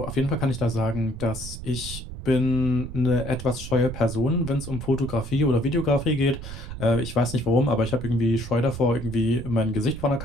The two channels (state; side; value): noise; right; rumble, 10 dB below the sound